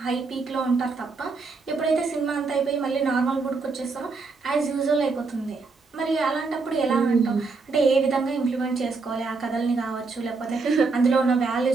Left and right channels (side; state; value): left; quieter; 4.2 dB